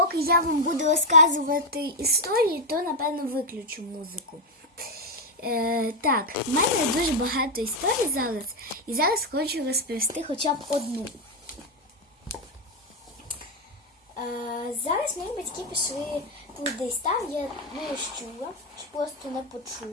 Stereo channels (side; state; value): both; normal; correlation 0.04